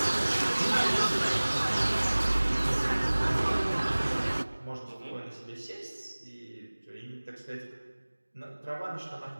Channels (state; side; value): inverted; both; correlation -1.00